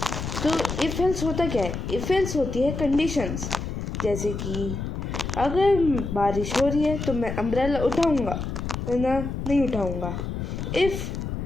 तो if else होता क्या है? if else होती है conditions, जैसे कि अगर बारिश हो रही है तो मैं अम्ब्रेला उठाऊंगा वरना नहीं उठाऊंगा. If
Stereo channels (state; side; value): noise; left; rumble, 5 dB below the sound